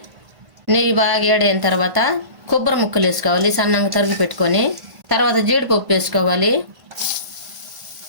నెయ్యి బాగా వేడైన తర్వాత కొబ్బరి ముక్కలు వేసుకోవాలి, సన్నంగా తరిగి పెట్టుకొని. తర్వాత జీడిపప్పు వేసుకోవాలి.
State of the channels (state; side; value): late; left; 1.5 ms